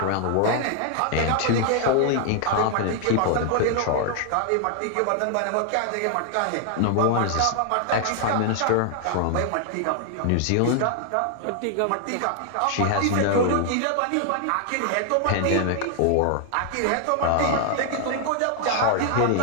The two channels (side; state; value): both; different; correlation 0.00